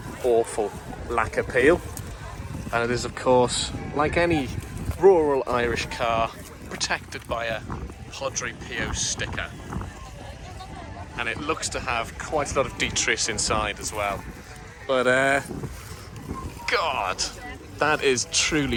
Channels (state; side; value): identical; both; correlation 1.00